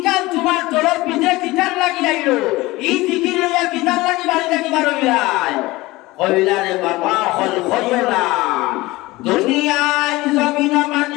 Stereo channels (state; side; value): quieter; right; 20.2 dB